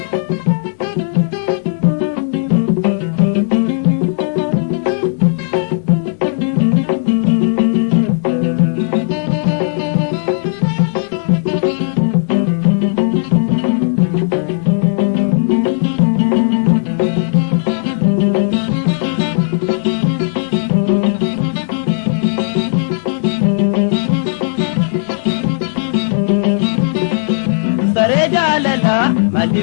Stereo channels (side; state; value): right; silent; digital silence